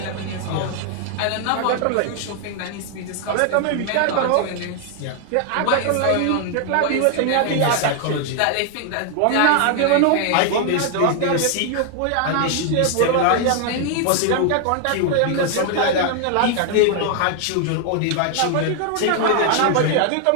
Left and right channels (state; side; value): different; both; correlation 0.00